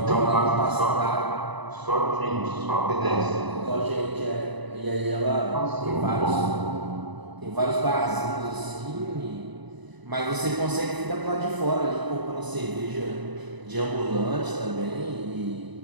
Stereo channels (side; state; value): left; late; 1.0 ms